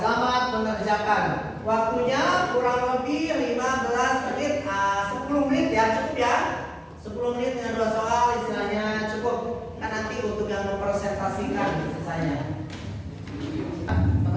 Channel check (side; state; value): both; identical; correlation 1.00